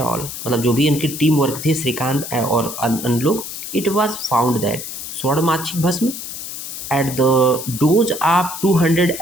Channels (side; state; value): left; noise; hiss, 8 dB below the sound